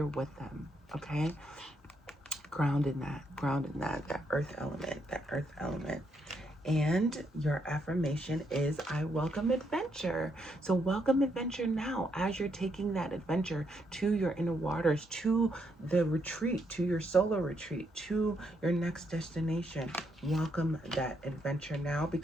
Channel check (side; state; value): both; normal; correlation 0.77